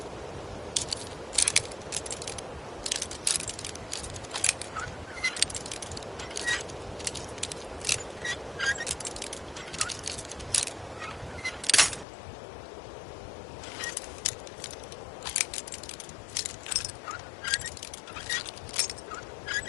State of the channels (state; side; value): drops out; right; at 12.1 s